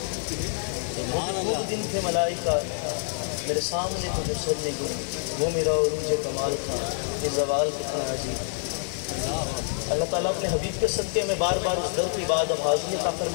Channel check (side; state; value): right; silent; 60 dB below the other